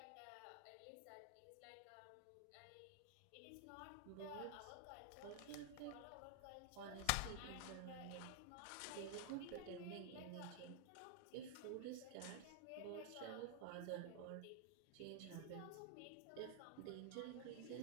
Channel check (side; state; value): both; different; correlation 0.00